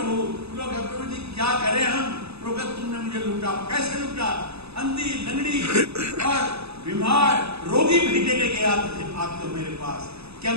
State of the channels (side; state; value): left; late; 0.79 ms